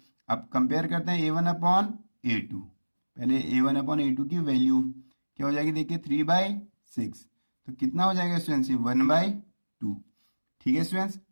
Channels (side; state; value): both; inverted; correlation -1.00